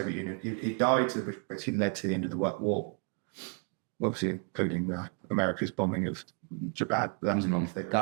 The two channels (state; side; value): quieter; left; 38.4 dB